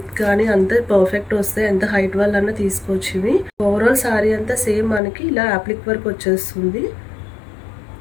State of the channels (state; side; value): drops out; right; at 5.0 s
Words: కానీ అంతా పర్ఫెక్ట్ వస్తాయి. ఎంత హైట్ వాళ్ళన్నా తీసుకోవచ్చు ఇవి. ఓవరాల్ సారీ అంతా సేమ్ మనకి ఇలా యాప్లిక్ వర్క్ వచ్చేస్తుంది.